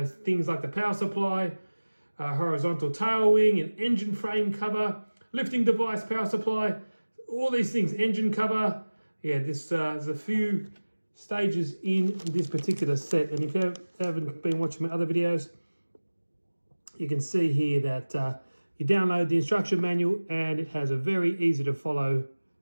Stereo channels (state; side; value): inverted; both; correlation -1.00